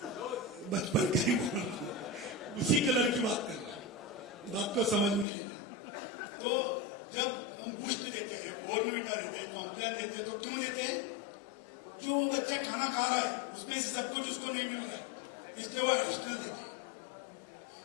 बचपन का ही बोल रहा हूं, उसी कलर की बात कर रहा हूं, बात को समझ में लेना। तो जब हम बूस्ट देते हैं, बॉर्नविटा देते हैं, कॉम्प्लान देते हैं, तो क्यों देते हैं? जो वो बच्चा खाना खा रहा है उसमें से सब कुछ उसको नहीं मिल रहा है, इसलिए वो एडिशनल देते हैं।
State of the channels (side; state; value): right; drops out; at 5.2 s